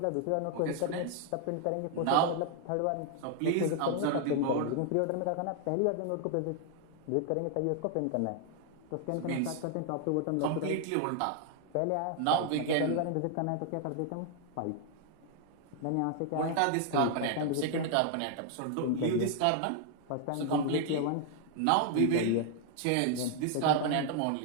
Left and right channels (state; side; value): different; both; correlation 0.00